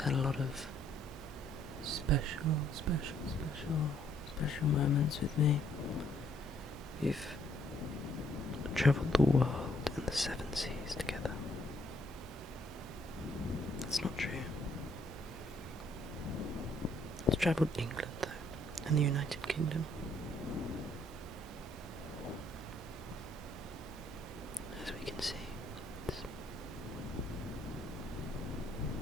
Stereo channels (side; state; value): both; normal; correlation 0.67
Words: a lot of special moments with me. We've travelled the world and the 7 seas together. That's not true. It's travelled England though, and the United Kingdom. As we can see, it's